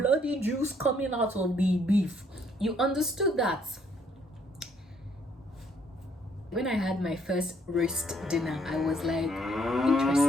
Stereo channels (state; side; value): normal; both; correlation 0.67